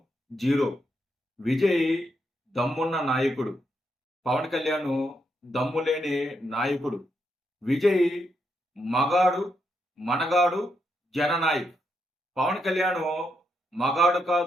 zero. విజయ్ దమ్మున్న నాయకుడు, పవన్ కళ్యాణ్ దమ్ము లేని నాయకుడు. విజయ్ మగాడు, మనగాడు, జననాయక్. పవన్ కళ్యాణ్ మగాడు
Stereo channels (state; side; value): normal; both; correlation 0.80